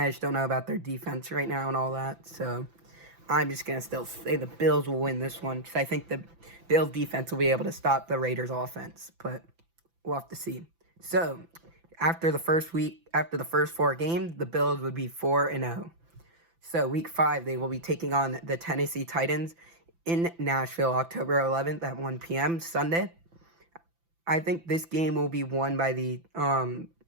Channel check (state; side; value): late; left; 6.0 ms